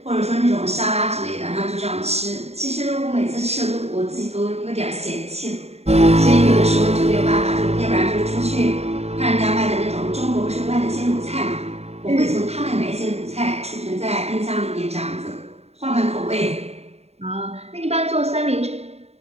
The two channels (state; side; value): late; left; 0.30 ms